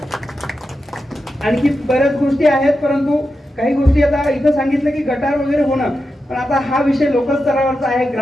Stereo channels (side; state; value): both; normal; correlation 0.89